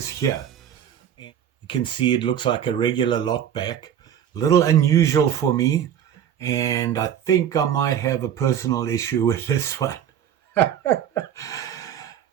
here. You can see it looks like a regular lockback. A little unusual for me. And I think I might have a personal issue with this one.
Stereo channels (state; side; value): quieter; left; 9.6 dB